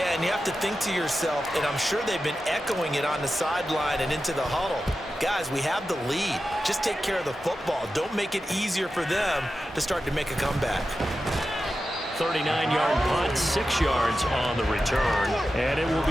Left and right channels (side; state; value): both; normal; correlation 0.92